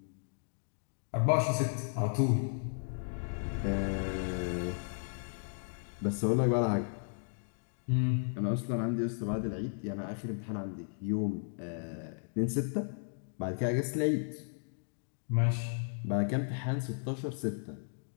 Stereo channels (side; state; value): right; silent; digital silence